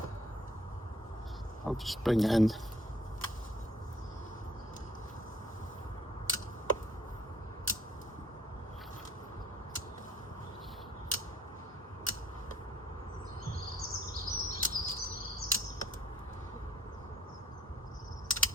I'll just bring it in.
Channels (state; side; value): normal; both; correlation 0.59